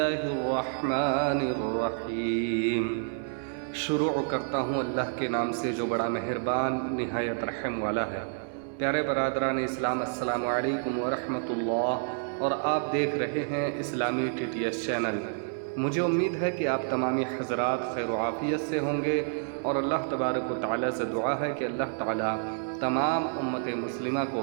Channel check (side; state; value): left; silent; digital silence